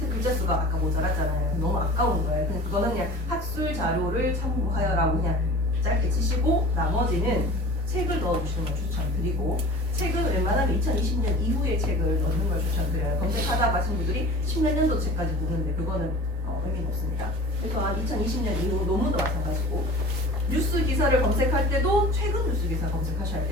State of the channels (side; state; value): right; noise; rumble, 22 dB below the sound